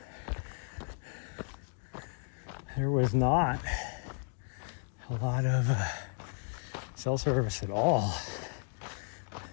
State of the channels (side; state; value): right; silent; 55 dB below the other